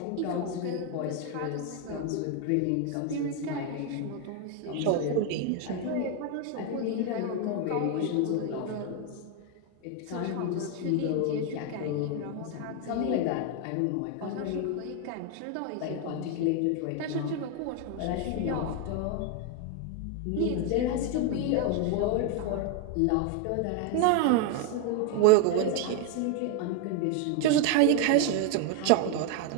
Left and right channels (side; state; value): both; different; correlation 0.01